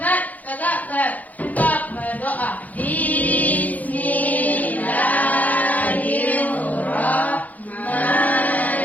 tegak, gerak. Kita berdoa.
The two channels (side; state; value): right; late; 0.078 ms